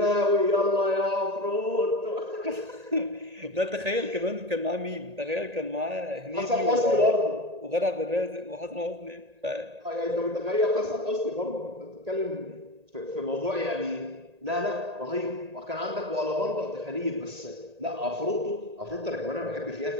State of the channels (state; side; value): late; left; 1.8 ms